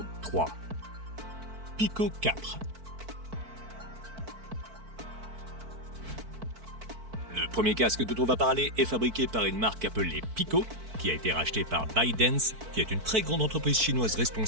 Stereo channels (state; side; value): late; left; 4.5 ms